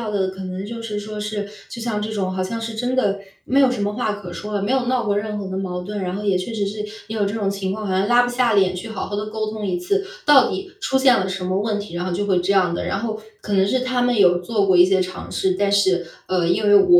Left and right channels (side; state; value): both; identical; correlation 1.00